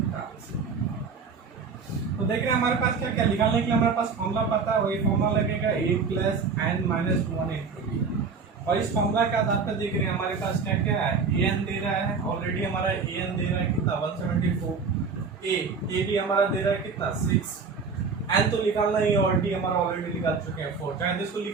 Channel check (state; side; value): quieter; left; 5.1 dB